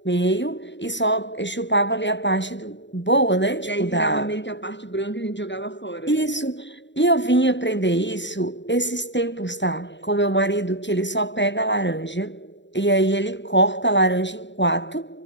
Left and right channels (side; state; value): right; late; 0.53 ms